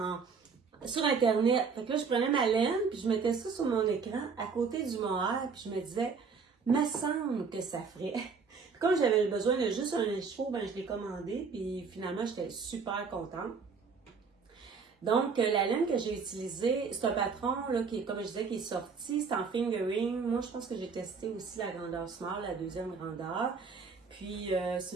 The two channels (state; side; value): quieter; left; 5.3 dB